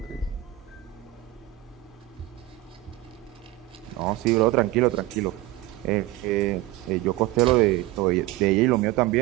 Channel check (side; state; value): left; quieter; 16.7 dB